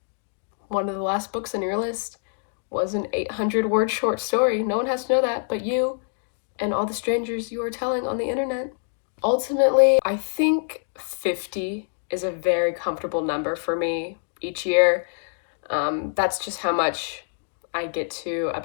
one of the last books on your list was an 800-word short story. No one has to know that but you and all the strangers you are telling on the internet. Ultimately, I think 50 is a very comfortable number for me each year. That's just how much I get to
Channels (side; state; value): right; silent; digital silence